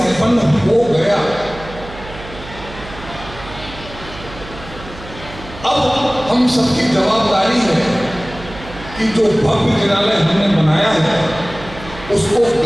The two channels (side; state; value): right; noise; hum, 15 dB below the sound